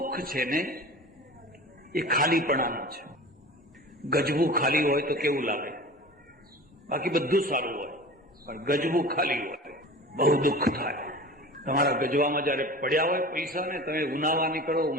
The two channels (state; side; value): normal; both; correlation 0.37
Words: છે ને એ ખાલીપણાનું છે. ગજવું ખાલી હોય તો કેવું લાગે? બાકી બધું સારું હોય, પણ ગજવું ખાલી હોય બહુ દુઃખ થાય. તમારા ગજવામાં જયારે પડ્યા હોય પૈસા ને, તમે ઉનાવા નીકળો,